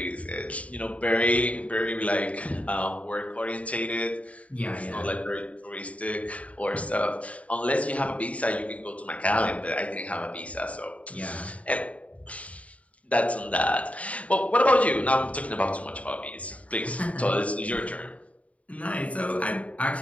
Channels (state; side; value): late; right; 0.067 ms